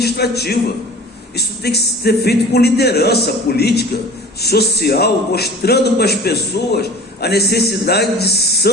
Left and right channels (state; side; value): normal; both; correlation 0.42